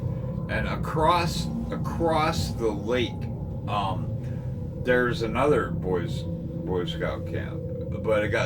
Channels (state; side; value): identical; both; correlation 1.00